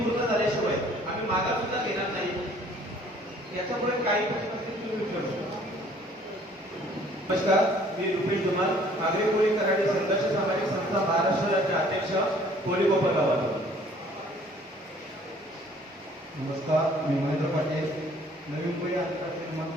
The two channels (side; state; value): both; normal; correlation 0.57